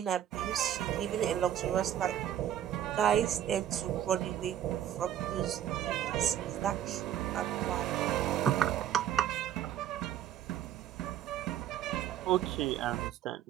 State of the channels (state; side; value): quieter; left; 10.8 dB